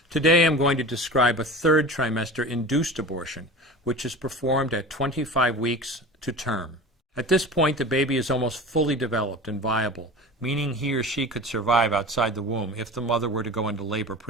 Today I'm going to describe a third trimester induced abortion, which is performed at 25 weeks to term. At this point, the baby is almost fully developed and viable, meaning he or she could survive outside the womb if the mother were to go into labor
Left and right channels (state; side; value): normal; both; correlation 0.34